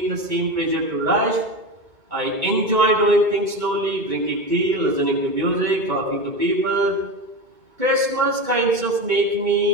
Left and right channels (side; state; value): left; late; 2.2 ms